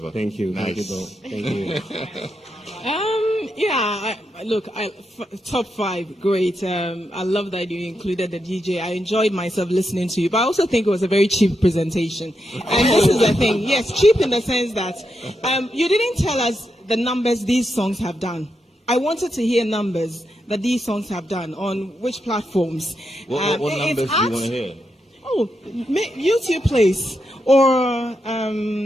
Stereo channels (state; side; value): normal; both; correlation 0.84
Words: Thank you. Nice. Thank you. Top 5, great. I love that you included the DJ. I enjoyed myself listening to you, but I also think it was a very cheap presentation. And this is the thing, yes, cheap in the sense that you didn't tell us the numbers these songs have done. I wanted to hear numbers that these songs have done on which platforms. What numbers do you want to hear? Oh, YouTube Place or